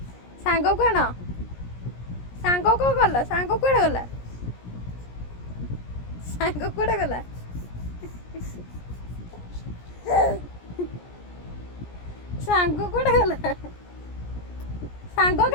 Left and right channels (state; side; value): late; right; 17 ms